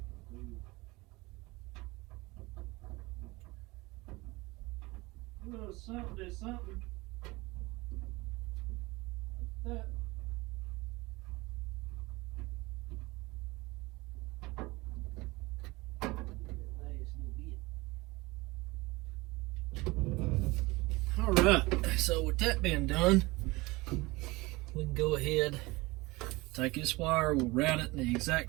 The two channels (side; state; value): left; quieter; 22.5 dB